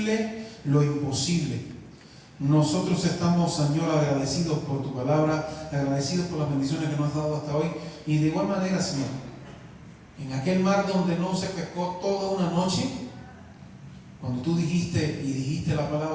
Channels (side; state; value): both; identical; correlation 1.00